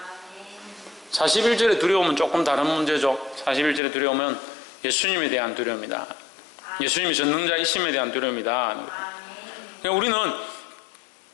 41절의 두려움은 조금 다른 문제죠. 41절의 두려움은 예수님에 대한 두려움이다. 예수님이 전능자이심에 대한 두려움이다. 그러니까 우리는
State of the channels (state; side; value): drops out; right; at 3.8 s